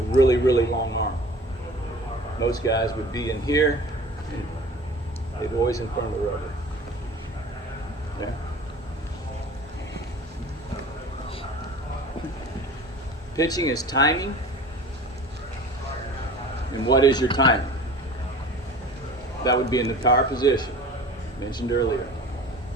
really, really long arm. Most guys would be in here, and they'd always in front of the rubber. Yeah. Pitching is timing. And what is your timing? That would be in the power position, mentioned earlier.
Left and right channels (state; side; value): normal; both; correlation 0.42